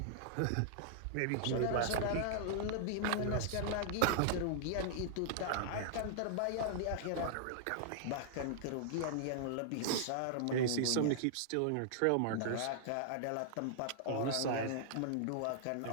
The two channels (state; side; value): different; both; correlation -0.01